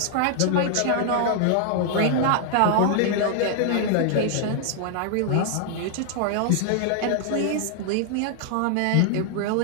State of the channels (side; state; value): both; different; correlation 0.00